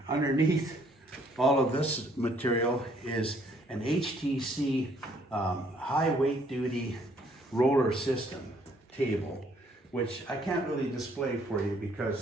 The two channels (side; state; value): both; normal; correlation 0.65